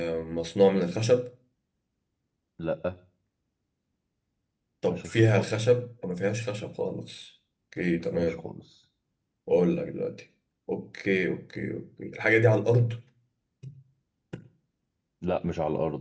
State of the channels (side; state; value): both; identical; correlation 1.00